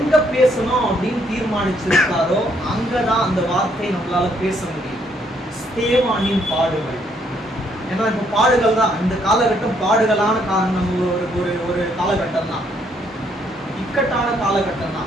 பேசணும் அப்படின்னு தீர்மானிச்சிருக்காரோ அங்கதான் அந்த வார்த்தையை நம்மளால பேச முடியும். ஸ்தேவானின் பாடுகள். ஏன்னா இப்ப பாடுகள் தான் இந்த காலகட்டம், பாடுகளான நம்ம ஒரு காலகட்டம் தான், இக்கட்டான காலகட்டம்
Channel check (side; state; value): both; normal; correlation 0.70